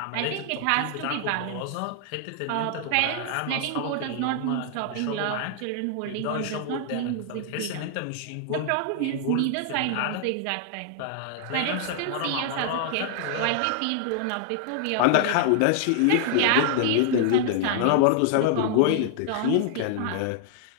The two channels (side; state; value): both; different; correlation -0.01